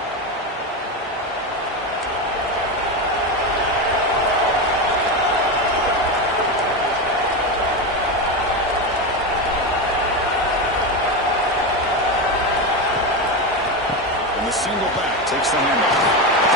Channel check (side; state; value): both; normal; correlation 0.15